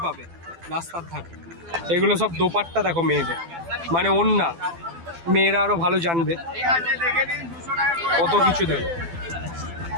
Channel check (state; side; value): late; left; 12 ms